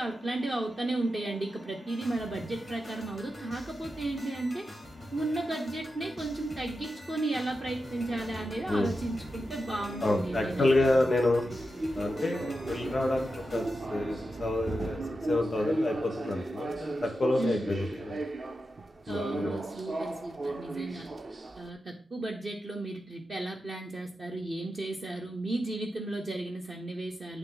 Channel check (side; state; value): both; normal; correlation 0.90